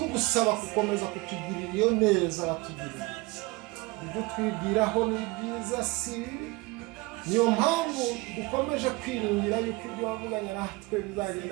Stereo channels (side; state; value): left; quieter; 24.0 dB